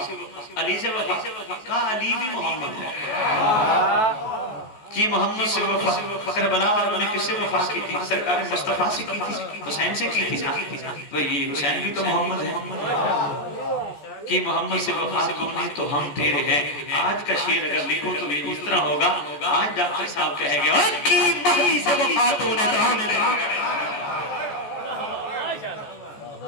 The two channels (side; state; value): right; late; 14 ms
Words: علی سے وفا، کہا علی بھی محمد ہے کہ محمد سے وفا، کربلا والوں نے کس سے وفا کی تھی؟ سرکار مصطفیٰ سے کی تھی، حسین سے کی تھی نا، وہی حسین بھی تو محمد ہے کہ محمد سے وفا تو نے تو ہم تیرے ہیں۔ آج کا شعر اگر لکھوں تو یہ اس طرح ہوگا، آج ڈاکٹر صاحب کہے گے کہ مہدی سے وفا تو نے تو ہم تیرے ہیں،